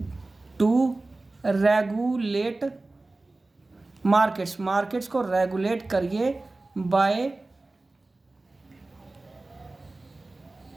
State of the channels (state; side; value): quieter; left; 3.1 dB